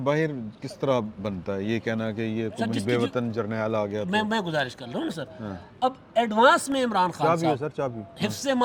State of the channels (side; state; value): both; identical; correlation 1.00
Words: किस तरह बनता है? ये कहना कि ये सर, जिसकी बेवतन जर्नैल आ गया तो मैं गुजारिश कर रहा हूँ ना सर। अब एडवांस में इमरान खान चाबी हो साहब सर, चाबी। हिफ्ज़